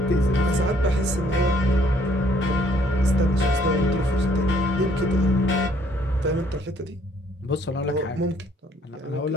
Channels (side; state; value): both; normal; correlation 0.64